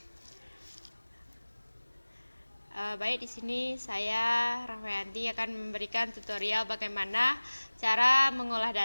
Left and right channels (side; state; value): both; inverted; correlation -1.00